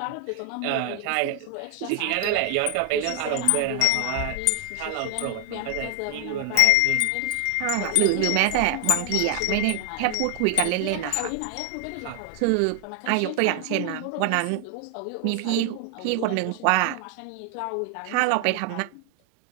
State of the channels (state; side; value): different; both; correlation 0.00